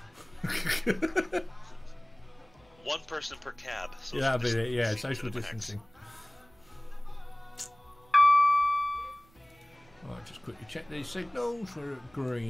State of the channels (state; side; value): noise; right; rumble, 30 dB below the sound